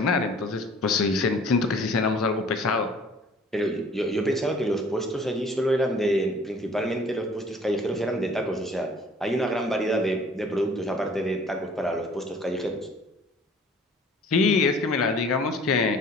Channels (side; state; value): both; normal; correlation 0.52